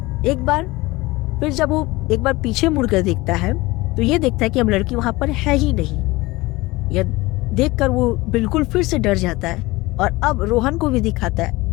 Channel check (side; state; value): right; quieter; 21.0 dB